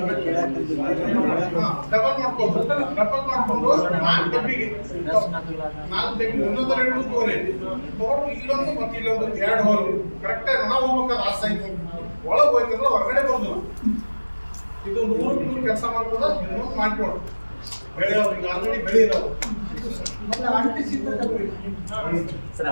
ಮಾಡ್ಕೊಂಡು 4 ಡಬ್ಬಿಗೆ 4 ಡಬ್ಬಿ ಒಂದೊಂದು 2 ತಗೋರಿ ತಗೊಂಡು ಇಲ್ಲೊಂದು ಮತ್ತೆ ಇಲ್ಲೊಂದು 2 ಹೋಗಿ ಕರೆಕ್ಟಾಗಿ ನಾವು ಹೋಗ್ಬೇಕಾದ್ರೆ ಆ ಸೈಜ್ ಒಳಗೆ ಹೋಯ್ತಂದ್ರೆ ಹೊರಗಡೆ ಬರೋದಿಲ್ಲ. ಇದು 100 ಕೆಲಸ ಮಾಡ್ಬೋದ ಇನ್ನೊಂದು ಮಾಡ್ಕೊಡು ಬೆಳೆಯೋರಿಗೆ ಆಲ್ರೆಡಿ ಬೆಳೆಯಿರೋದು ಮತ್ತೆ ಅಂಟಿಸಿದ್ರೆ ಸರ್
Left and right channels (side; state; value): both; inverted; correlation -1.00